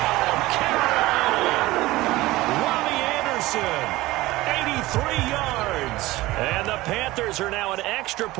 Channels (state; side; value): quieter; left; 18.5 dB